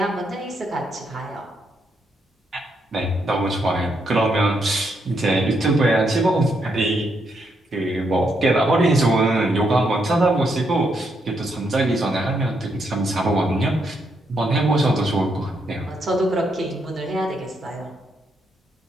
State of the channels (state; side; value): normal; both; correlation 0.78